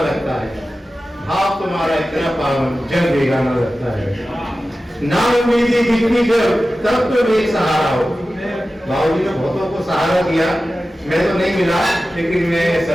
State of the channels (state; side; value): normal; both; correlation 0.95